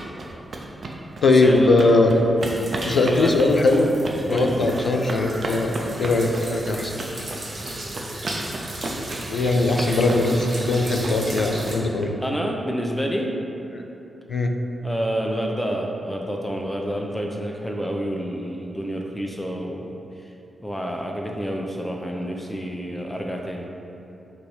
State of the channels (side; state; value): both; normal; correlation 0.80